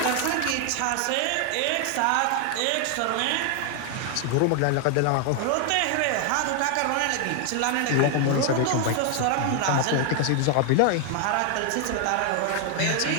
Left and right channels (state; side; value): different; both; correlation 0.00